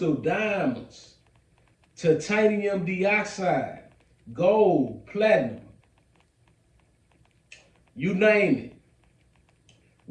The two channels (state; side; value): identical; both; correlation 1.00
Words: of diamonds, titanium dioxide, gold, platinum, you name it.